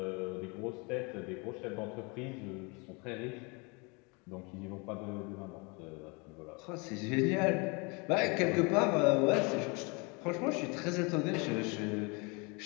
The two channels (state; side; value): quieter; right; 30.2 dB